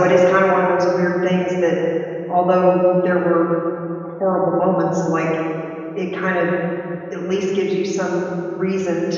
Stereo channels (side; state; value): both; identical; correlation 1.00